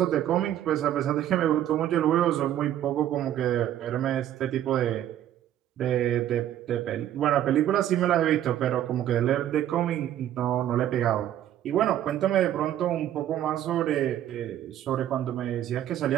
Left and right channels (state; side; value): quieter; left; 11.7 dB